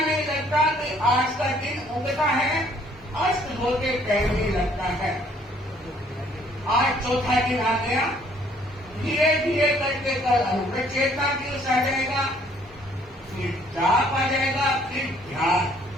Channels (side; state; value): both; normal; correlation 0.62